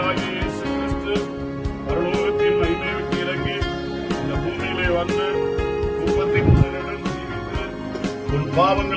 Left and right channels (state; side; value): identical; both; correlation 1.00